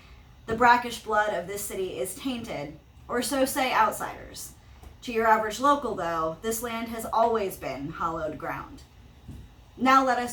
The brackish blood of this city is tainted, or so say outsiders. To your average local, though, this land has always been hallowed ground. Now let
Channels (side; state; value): both; identical; correlation 1.00